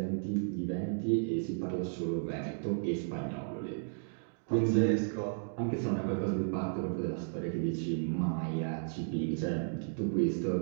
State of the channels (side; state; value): left; silent; digital silence